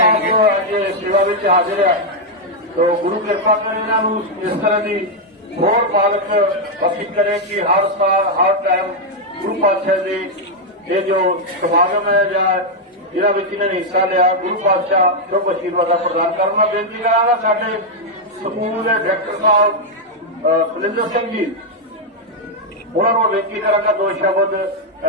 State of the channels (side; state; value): both; normal; correlation -0.01